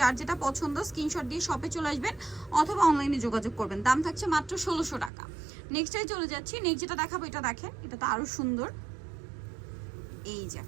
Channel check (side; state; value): left; drops out; at 5.1 s